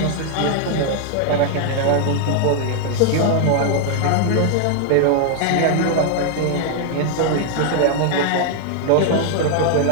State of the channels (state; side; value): different; both; correlation 0.00